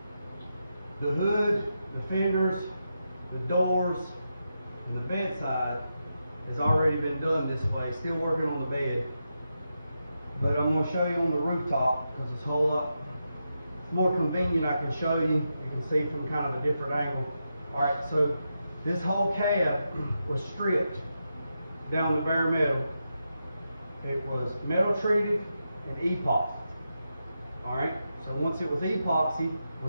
The hood, the fenders, the doors, and the bedside has already been done this way. Still working on the bed, but I'm going to show you on the rooftop because it's a whole lot more convenient. I can show you. You can see from kind of a different angle. All right, so this whole cab was stripped down to bare metal. It was metal treated and epoxy. All right, so once it was epoxy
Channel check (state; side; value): inverted; both; correlation -0.87